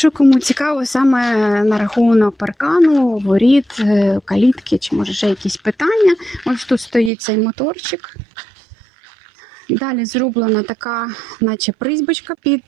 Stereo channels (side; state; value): left; drops out; at 7.1 s